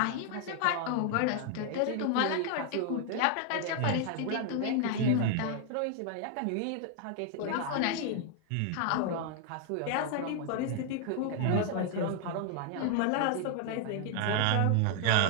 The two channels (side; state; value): both; different; correlation 0.00